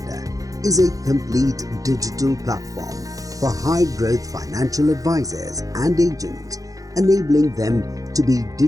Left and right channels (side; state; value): left; late; 0.17 ms